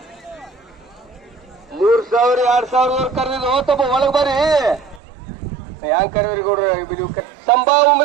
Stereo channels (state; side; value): drops out; left; at 5.0 s